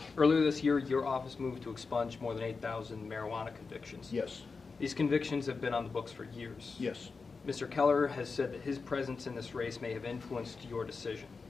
Earlier this year, your office moved to expunge more than 8,000 marijuana convictions. Yes. These convictions have been on the books for years. Yes. Mr. Keller has said that his presence in this race may have influenced your decision.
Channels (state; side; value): quieter; right; 4.6 dB